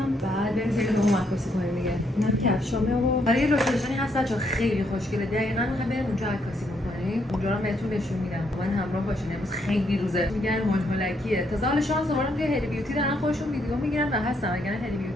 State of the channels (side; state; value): both; normal; correlation 0.74